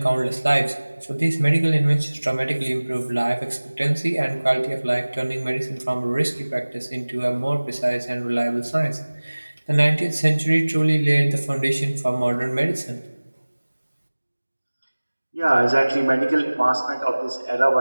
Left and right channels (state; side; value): inverted; both; correlation -1.00